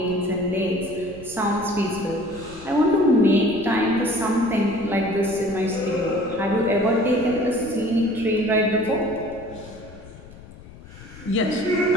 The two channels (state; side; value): noise; left; rumble, 18 dB below the sound